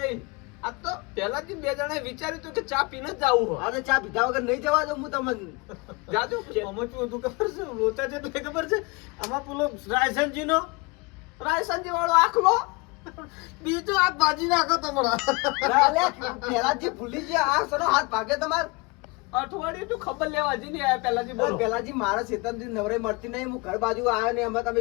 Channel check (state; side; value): quieter; right; 27.2 dB